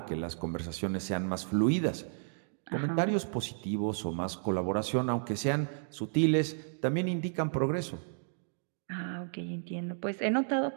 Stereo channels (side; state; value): left; silent; digital silence